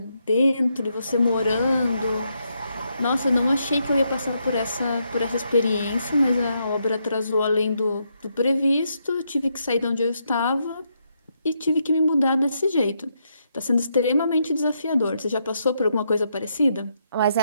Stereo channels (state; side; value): inverted; both; correlation -0.79